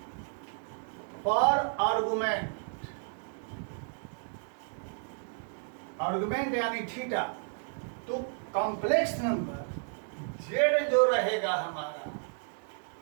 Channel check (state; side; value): silent; left; 56 dB below the other